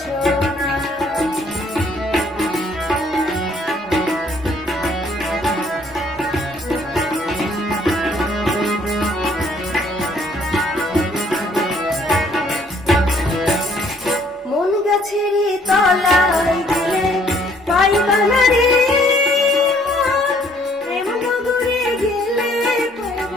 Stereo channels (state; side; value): normal; both; correlation 0.63